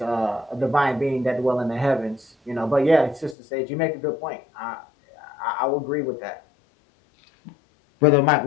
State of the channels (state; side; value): drops out; right; at 3.4 s